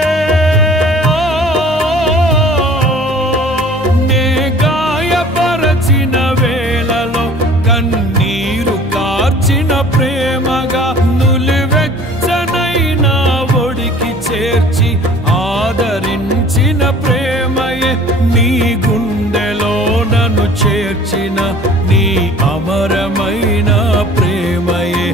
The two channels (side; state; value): both; normal; correlation 0.49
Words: ప్రేమగా నులివెచ్చనైనా ఒడికి చేర్చి ఆదరించిన ప్రేమయే నీ గుండెలో నన్ను చేర్చిన నీ అమరమైన ప్రేమయే